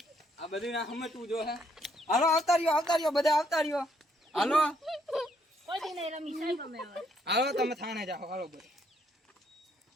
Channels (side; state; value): both; normal; correlation 0.71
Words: આ બધું ના સમજવું જો હે. હાલો આવતા રહ્યો બધા આવતા રહ્યો. હાલો કોઈ દી નહીં રમી સાહેબ અમે હવે. હાલો તમે થાણે જાઓ. હાલો બધા